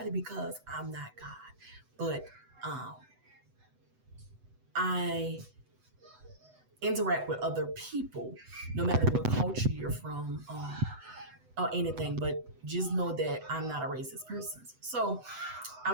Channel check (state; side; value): late; left; 8.0 ms